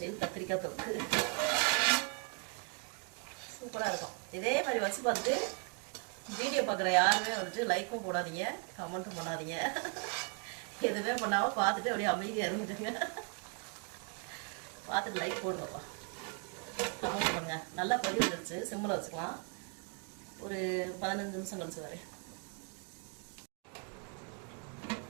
கத்திரிக்காய் தொக்கு சூப்பராக இருக்கும். இதே மாதிரி வச்சு பார்த்துட்டு வீடியோ பார்க்குற யாருமே வந்துட்டு லைக்கும் போடாதீங்க, கமெண்ட்டும் பண்ணாதீங்க. எதுவுமே பண்ணாமல் பார்த்துட்டு அப்படியே அமைதியாக இருந்துட்டுங்க. பார்த்துட்டு லைக் போடுங்கப்பா, கமெண்ட் பண்ணுங்க. நல்லா கொதி வந்துருச்சு, சிம்மில் வச்சுக்கலாம். ஒரு 15 நிமிஷம் கழிச்சு வரேன்.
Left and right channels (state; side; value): quieter; left; 36.1 dB